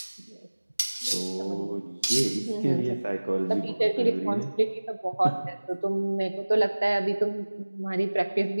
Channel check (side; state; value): both; inverted; correlation -1.00